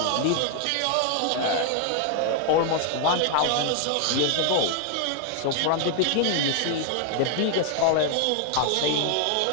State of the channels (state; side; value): different; both; correlation 0.00